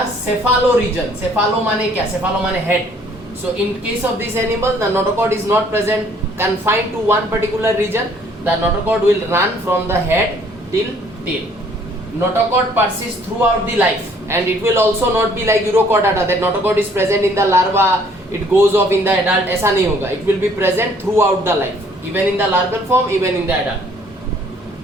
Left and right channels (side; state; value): both; normal; correlation 0.60